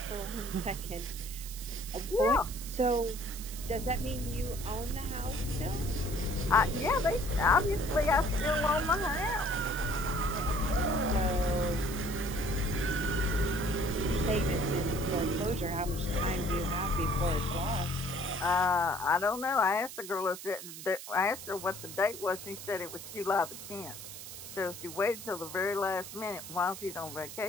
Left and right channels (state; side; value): noise; right; hiss, 11 dB below the sound